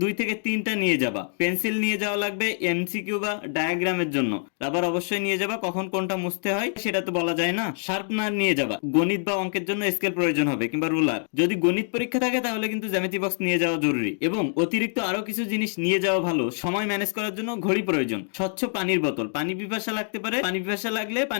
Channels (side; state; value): right; silent; digital silence